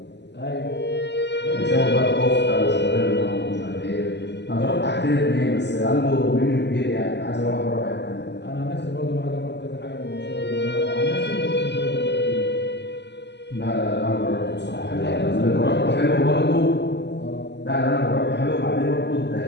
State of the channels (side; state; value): right; late; 0.50 ms